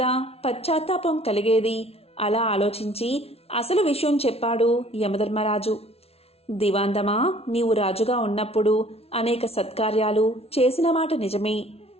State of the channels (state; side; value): late; right; 0.30 ms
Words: పశ్చాత్తాపం కలిగేది. అలా ఆలోచించి అసలు విషయం చెప్పాడు యమధర్మరాజు. దివాందమా, నీవు రాజుగా ఉన్నప్పుడు అనేక సత్కార్యాలు చేసిన మాట నిజమే.